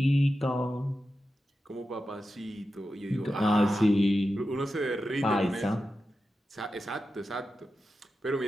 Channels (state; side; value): normal; both; correlation 0.91